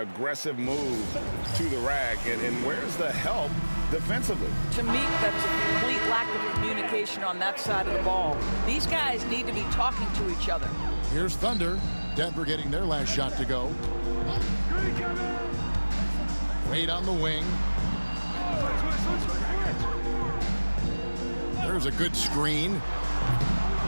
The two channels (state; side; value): inverted; both; correlation -1.00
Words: move to the rack. And where's the help defensively? To me, that's a complete lack of communication on that side of the ball. These guys need to be talking to each other. Here's Thunder. Denver getting their last shot to go. Wade on the wing. There's a good screen.